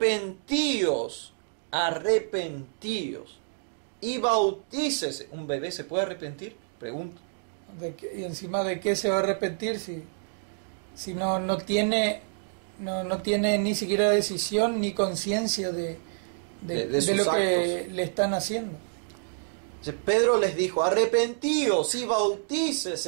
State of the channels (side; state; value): left; silent; digital silence